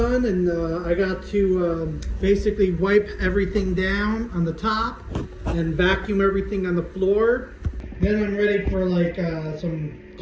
and I got to basically wipe everything down on the top and vacuum everything on the floor, then I'm ready for like some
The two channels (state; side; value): identical; both; correlation 1.00